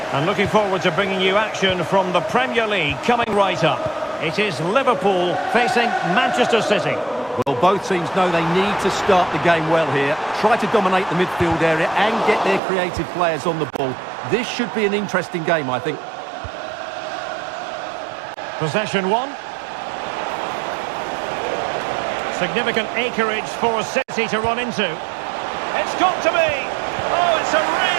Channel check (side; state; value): left; drops out; at 12.6 s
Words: And looking forward to bringing you action from the Premier League coming right up. It is Liverpool facing Manchester City. Well, both teams know they need to start the game well here. Try to dominate the midfield area and get their creative players on the ball. This should be an interesting game, I think. Possession one. Significant acreage for City to run into. It's got to be! Oh, it's a